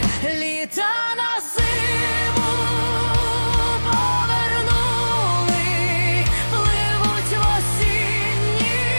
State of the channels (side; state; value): both; inverted; correlation -1.00